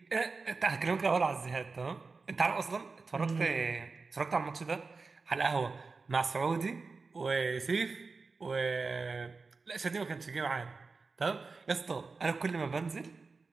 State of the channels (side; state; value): left; quieter; 4.2 dB